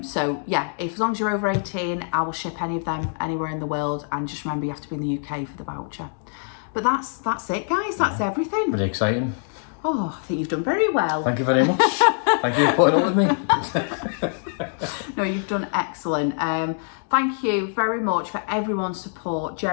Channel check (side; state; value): right; silent; digital silence